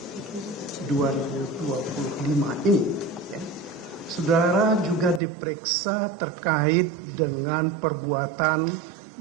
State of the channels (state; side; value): drops out; left; at 5.2 s